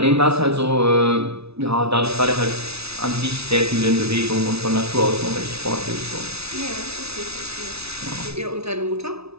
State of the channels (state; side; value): late; left; 0.79 ms